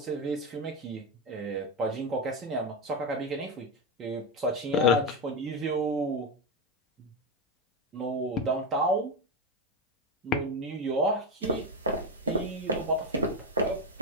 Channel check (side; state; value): both; normal; correlation 0.12